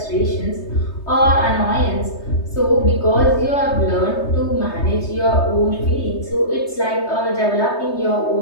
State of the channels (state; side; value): late; right; 3.2 ms